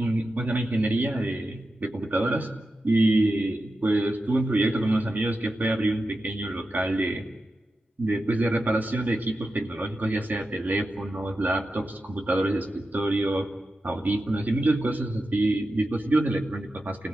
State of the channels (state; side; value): normal; both; correlation 0.91